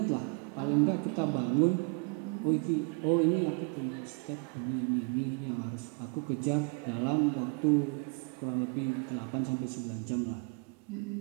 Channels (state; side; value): quieter; left; 35.5 dB